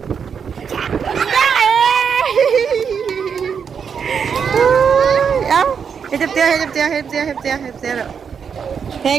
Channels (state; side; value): quieter; left; 6.8 dB